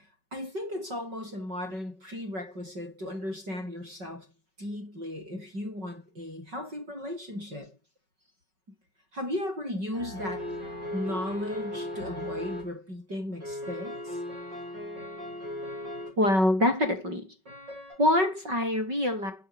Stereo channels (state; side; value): late; left; 5.3 ms